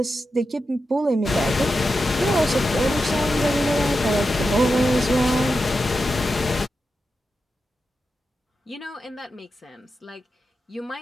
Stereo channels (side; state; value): both; normal; correlation 0.89